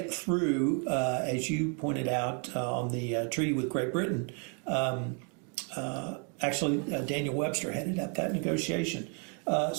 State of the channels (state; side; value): quieter; left; 39.0 dB